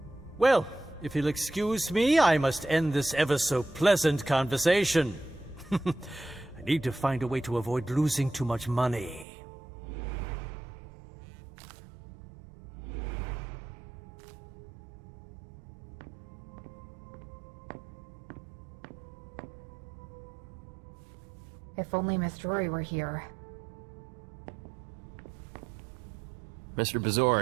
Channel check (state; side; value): drops out; left; at 9.2 s